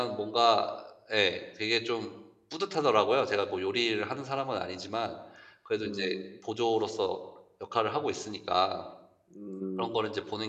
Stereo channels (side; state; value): both; identical; correlation 1.00